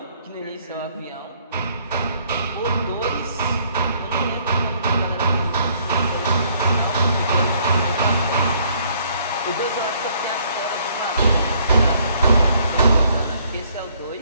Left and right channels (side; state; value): both; inverted; correlation -0.64